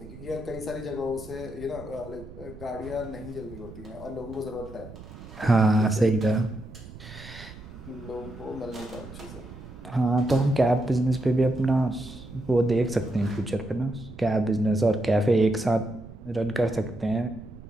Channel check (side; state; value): right; noise; rumble, 16 dB below the sound